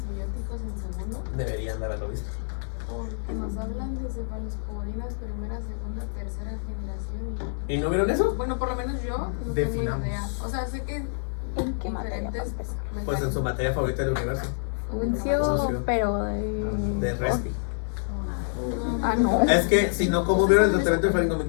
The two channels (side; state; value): right; silent; digital silence